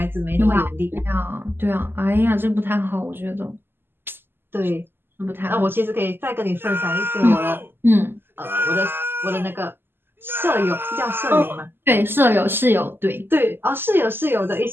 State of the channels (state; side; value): late; left; 0.10 ms